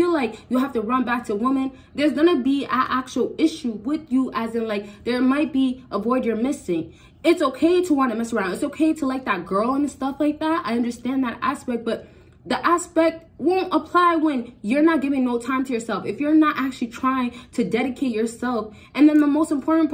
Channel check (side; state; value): both; identical; correlation 1.00